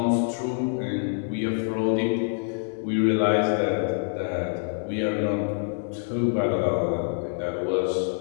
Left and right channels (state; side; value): silent; right; 61 dB below the other